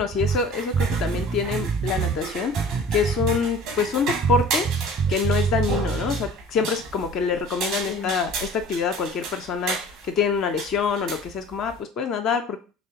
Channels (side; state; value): both; normal; correlation 0.44